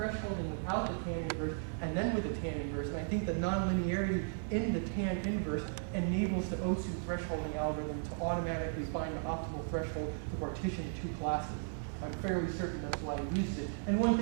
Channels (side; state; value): left; silent; digital silence